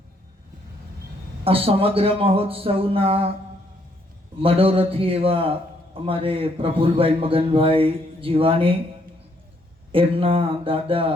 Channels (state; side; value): normal; both; correlation 0.70